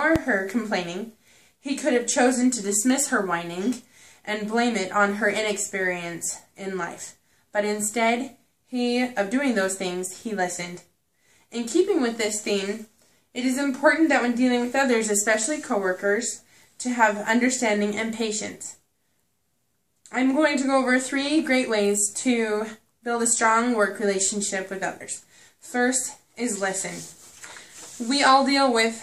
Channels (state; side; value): identical; both; correlation 1.00